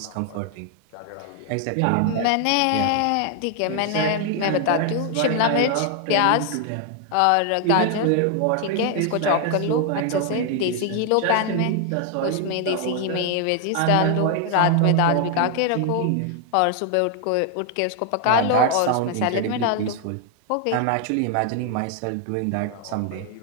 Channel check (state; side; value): different; both; correlation 0.00